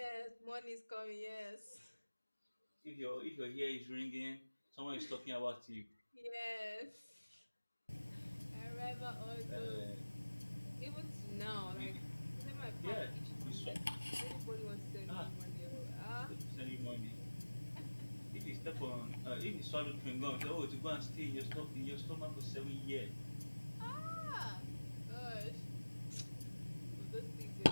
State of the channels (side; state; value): both; inverted; correlation -1.00